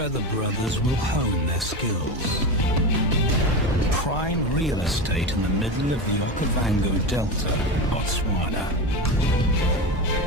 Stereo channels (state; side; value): normal; both; correlation 0.21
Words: the brothers will hone their skills. Prime real estate in the middle of the Okavango Delta, Botswana.